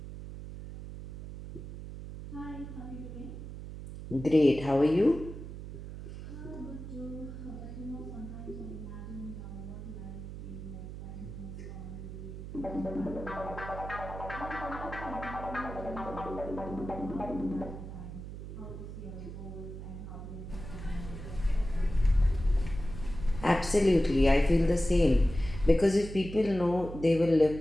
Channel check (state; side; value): noise; right; hum, 10 dB below the sound